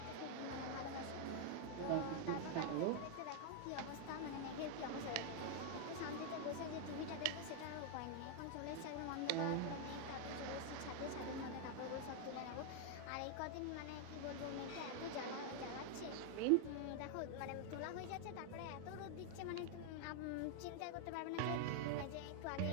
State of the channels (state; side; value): different; both; correlation 0.00